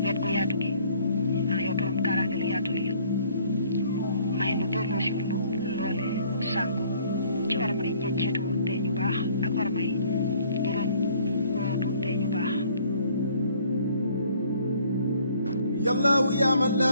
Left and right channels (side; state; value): both; inverted; correlation -0.58